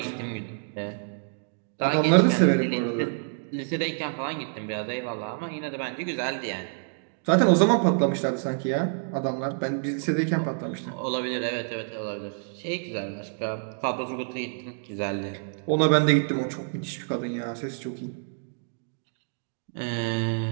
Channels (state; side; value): silent; left; digital silence